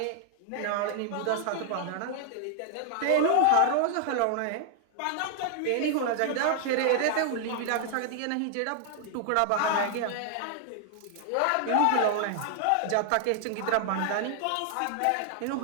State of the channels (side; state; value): both; different; correlation 0.00